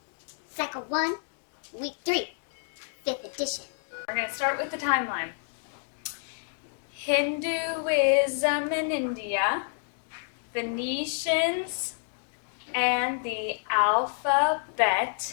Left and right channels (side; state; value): right; silent; digital silence